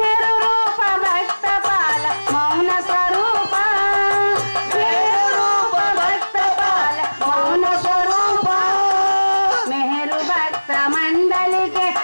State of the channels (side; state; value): both; inverted; correlation -1.00